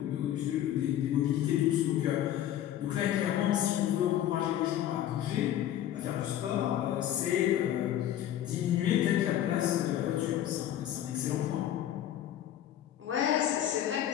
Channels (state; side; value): quieter; right; 11.6 dB